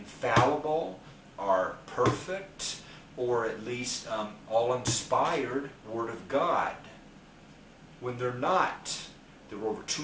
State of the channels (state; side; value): identical; both; correlation 1.00